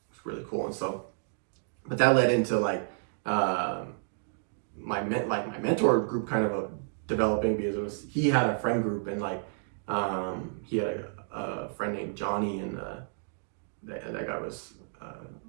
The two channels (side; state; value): left; silent; digital silence